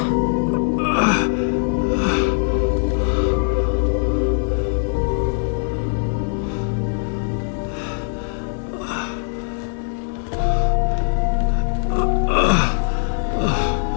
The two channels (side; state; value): right; silent; digital silence